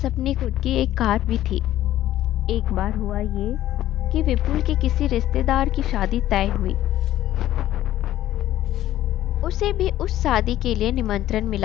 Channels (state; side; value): quieter; right; 13.5 dB